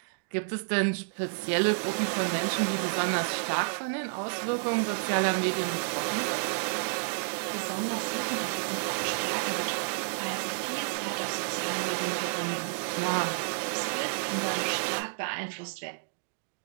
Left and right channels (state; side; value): silent; left; digital silence